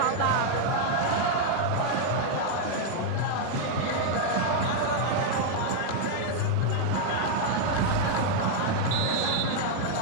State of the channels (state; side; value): different; both; correlation 0.00